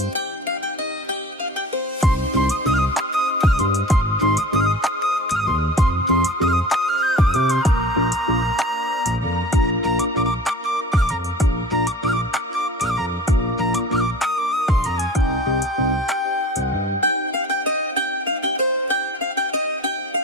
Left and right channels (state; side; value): normal; both; correlation 0.38